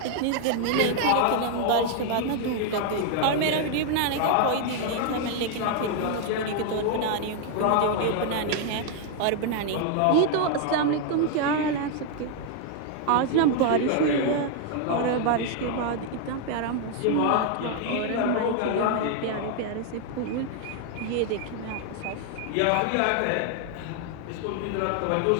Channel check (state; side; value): different; both; correlation 0.00